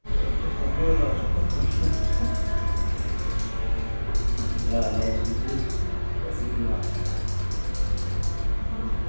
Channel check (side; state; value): both; inverted; correlation -1.00